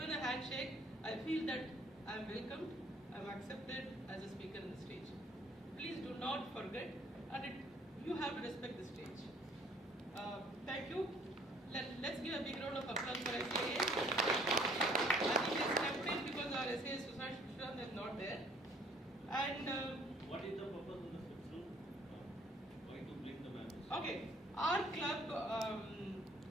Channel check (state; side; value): normal; both; correlation 0.59